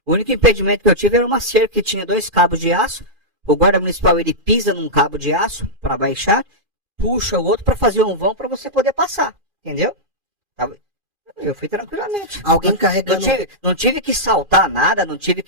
O único impedimento que eu tive era uma cerca que tinha 2 cabos de aço. O guarda municipal, ele pisa num cabo de aço para baixar, puxa o outro para fazer um vão para você poder passar, entendeu? Eu fui tranquilamente. Alguém carregando... Não tive que saltar nada, não tive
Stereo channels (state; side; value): late; left; 2.5 ms